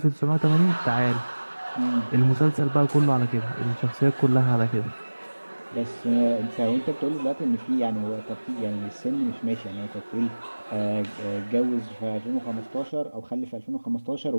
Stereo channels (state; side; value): inverted; both; correlation -1.00